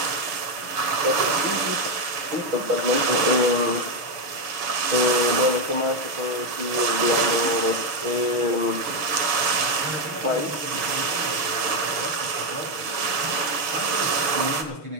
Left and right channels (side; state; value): left; late; 6.4 ms